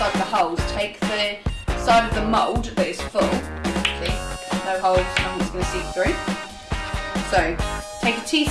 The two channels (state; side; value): identical; both; correlation 1.00